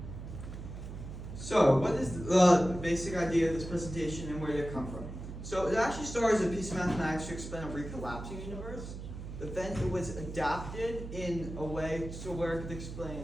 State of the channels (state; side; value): noise; right; hum, 9 dB below the sound